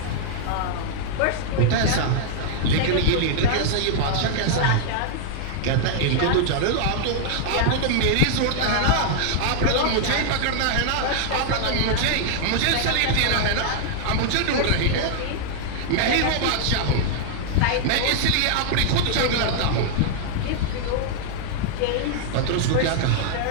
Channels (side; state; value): both; different; correlation -0.01